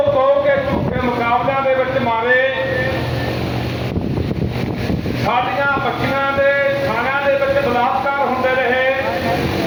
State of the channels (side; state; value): both; identical; correlation 1.00